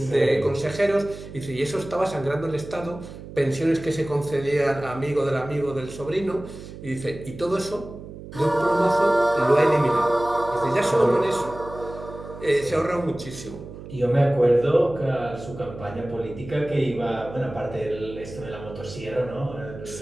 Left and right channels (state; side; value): noise; right; hum, 13 dB below the sound